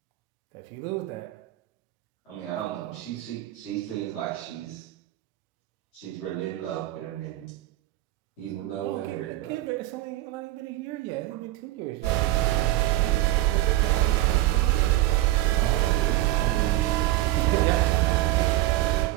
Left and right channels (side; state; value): left; quieter; 15.9 dB